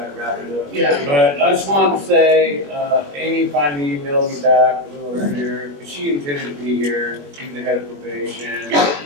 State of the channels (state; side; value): late; left; 21 ms